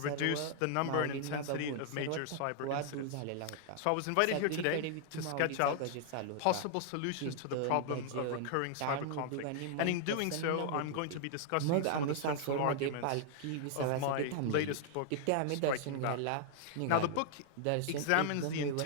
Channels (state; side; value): different; both; correlation 0.00